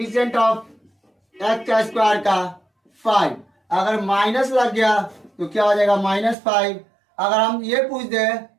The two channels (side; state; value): left; drops out; at 6.4 s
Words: ऑफ x² का 5। अगर माइनस लग गया तो क्या हो जाएगा, -5। अगर हम ये पूछ दे